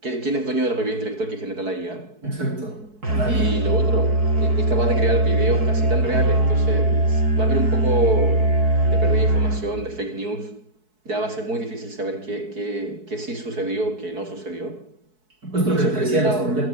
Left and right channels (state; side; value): late; left; 4.6 ms